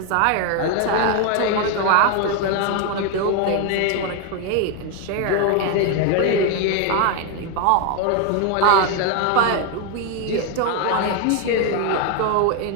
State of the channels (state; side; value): different; both; correlation 0.01